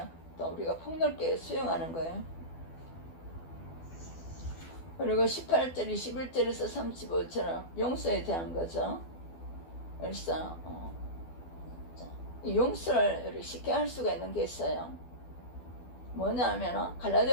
또 우리가 폭넓게 수용하는 거예요. 그리고 18절, 21절에서 35절은 용서에 대한 거죠. 그래서 용서를 쉽게 할 수가 있는 게 있어요. 뭐냐면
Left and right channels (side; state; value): right; late; 12 ms